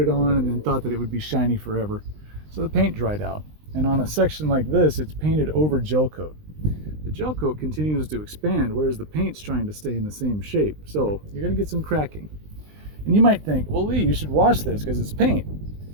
on and then thought that it would be shiny forever. So the paint dried out. And on a section like this, it's painted over gel coat. The gel coat continues to expand, whereas the paint's trying to stay in the same shape. So you're going to get some cracking. And you might think, well, Lee, you should wash this because it's paint.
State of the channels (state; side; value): late; left; 20 ms